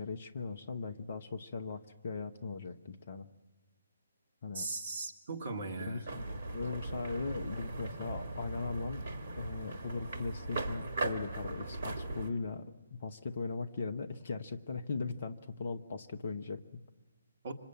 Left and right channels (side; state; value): both; inverted; correlation -0.79